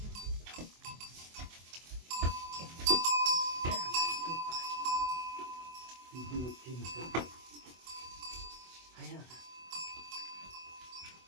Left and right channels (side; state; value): left; late; 24 ms